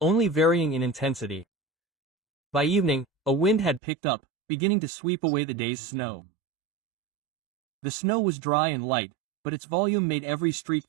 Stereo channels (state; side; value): drops out; left; at 3.8 s